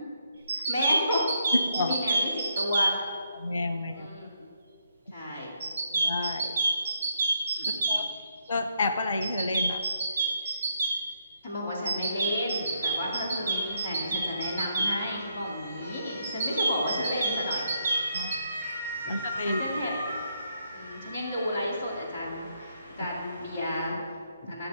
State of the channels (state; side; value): inverted; both; correlation -0.75